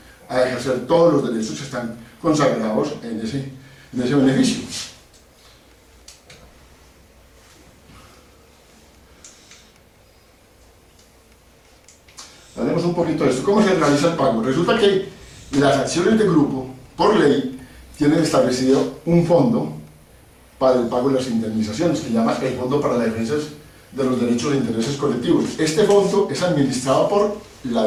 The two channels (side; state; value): both; identical; correlation 1.00